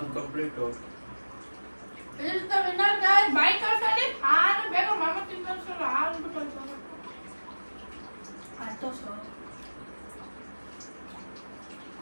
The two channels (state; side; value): inverted; both; correlation -1.00